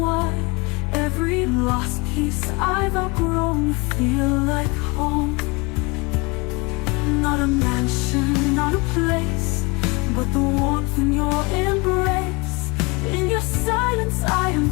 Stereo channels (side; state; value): right; quieter; 27.6 dB